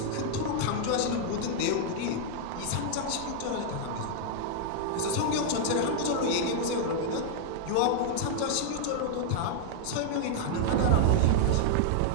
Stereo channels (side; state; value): both; different; correlation 0.00